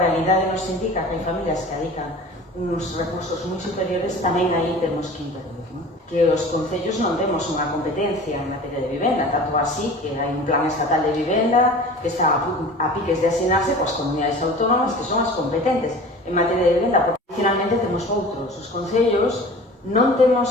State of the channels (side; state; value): both; normal; correlation 0.40